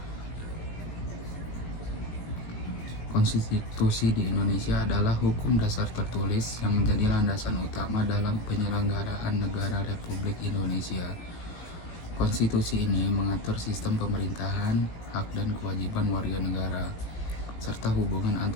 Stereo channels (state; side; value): late; right; 18 ms